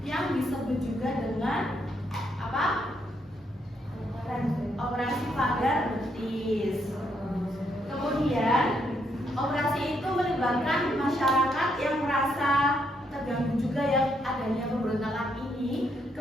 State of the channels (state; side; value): normal; both; correlation 0.75